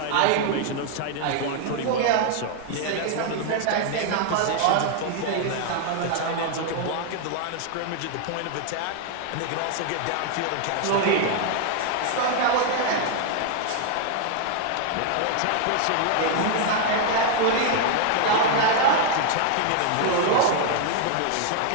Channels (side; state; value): both; different; correlation 0.00